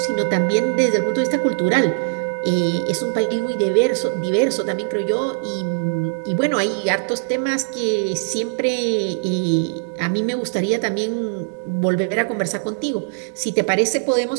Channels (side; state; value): left; silent; digital silence